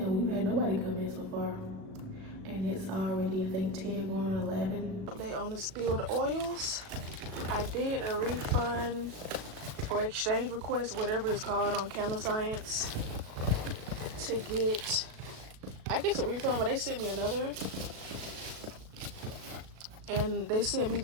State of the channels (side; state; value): left; late; 37 ms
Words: we've had nobody come in so far. And it's already, I think, 10 going on 11. Update on the spilled oils. I did a refund or exchange request, whatever it's called, on Candle Science to get, I guess, a refund, but they sent me another. And they sent me